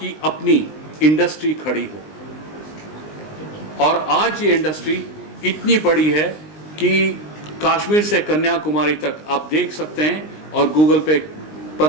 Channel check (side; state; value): right; late; 19 ms